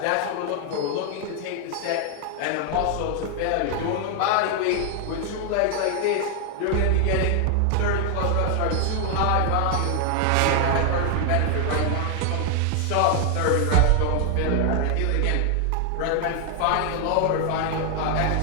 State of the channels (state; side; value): different; both; correlation 0.00